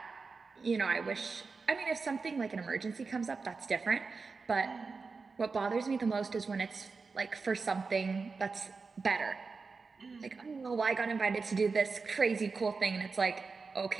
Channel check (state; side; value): quieter; left; 4.5 dB